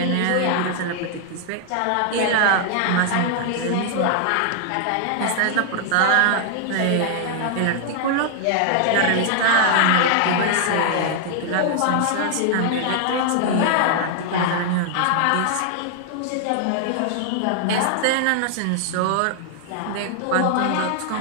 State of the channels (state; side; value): different; both; correlation 0.00